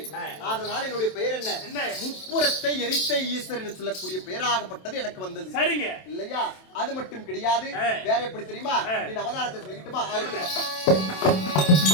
அதனால என்னுடைய பெயர் என்ன? முப்புறத்தை எரித்த ஈஸ்வரன் என்று சொல்லக்கூடிய பெயராகப்பட்டது எனக்கு வந்தது. சரிங்க இல்லையா? அது மட்டும் கிடையாது. வேற எப்படி தெரியுமா? நீ அவதாரத்தை சொல்லிக்கிட்டுமா?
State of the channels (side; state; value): right; late; 27 ms